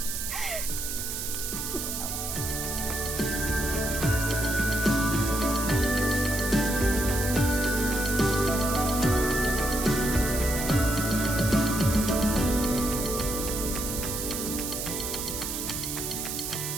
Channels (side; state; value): right; noise; hiss, 4 dB below the sound